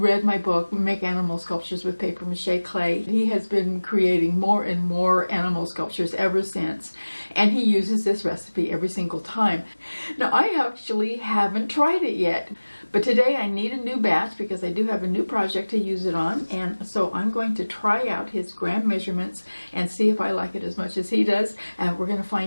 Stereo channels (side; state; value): both; inverted; correlation -1.00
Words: my book, Make Animal Sculptures with Papier-Mâché Clay. He has been creating more and more animal sculptures ever since, and he uses this recipe every single time. Now, I actually haven't tried it yet, but today I need a new batch because I do have a new project to use it on, and so I'm going to try out his gram measurements and see if I like it as much as he does, and we're going to